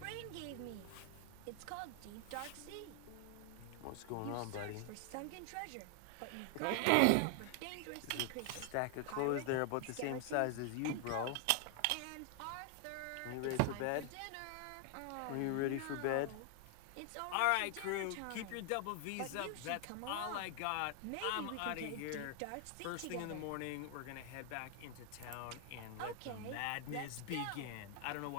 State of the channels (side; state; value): both; different; correlation 0.00